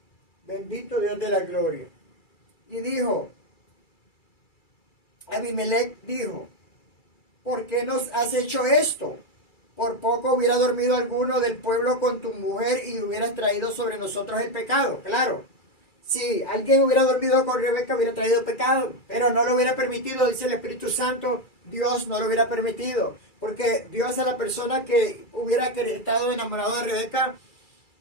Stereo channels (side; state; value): right; late; 2.3 ms